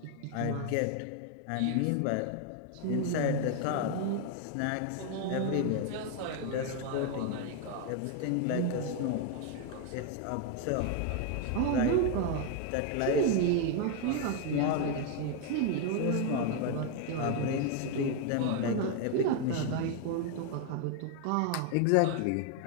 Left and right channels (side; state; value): both; different; correlation 0.01